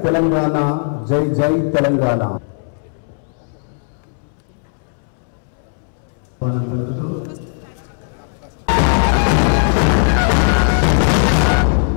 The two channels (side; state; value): right; silent; 68 dB below the other